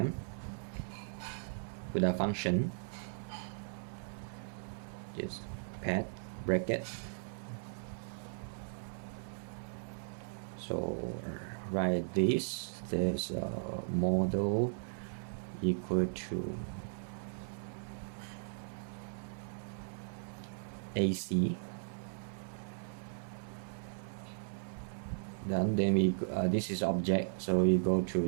with a function. Just pet bracket. So write this. There's a model equal to AC. Then we this is object, so we go to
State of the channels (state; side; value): silent; left; 53 dB below the other